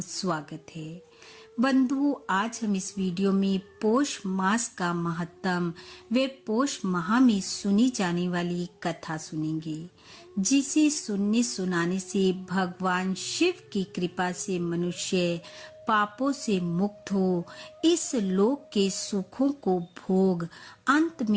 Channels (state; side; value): identical; both; correlation 1.00